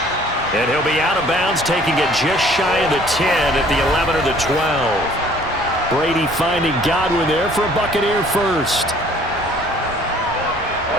And he'll be out of bounds, taking it just shy of the 10 at the 11 or the 12. Brady finding Godwin there for a Buccaneer first.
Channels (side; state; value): both; normal; correlation 0.55